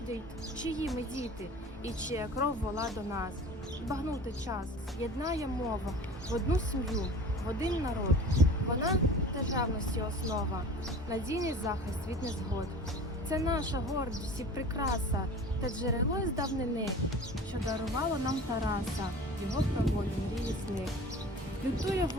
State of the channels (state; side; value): normal; both; correlation 0.40